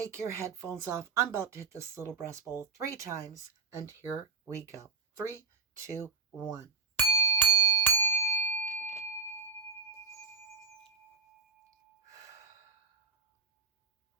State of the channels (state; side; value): quieter; left; 5.0 dB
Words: your headphones off. I'm about to hit this little breast bowl 3 times, and here we go. 3, 2, 1.